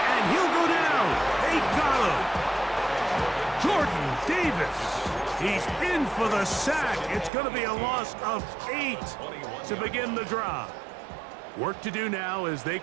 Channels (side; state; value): left; drops out; at 7.3 s